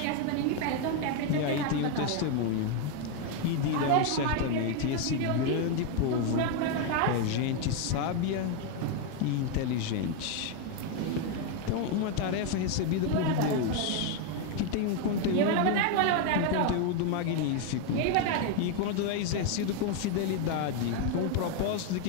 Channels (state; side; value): different; both; correlation 0.01